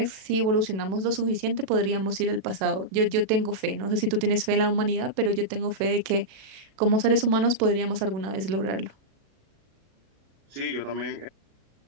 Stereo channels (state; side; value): late; left; 37 ms